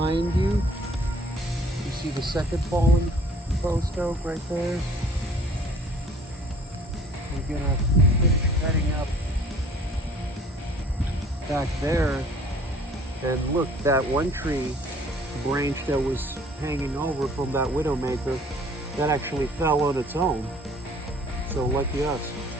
you. You see the second fallen post oak right there? We're going to finish cutting up back there. And look, that one tree branch that was hanging over from that widowmaker, that actually fell on its own. So lucky us.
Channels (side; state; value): both; normal; correlation 0.54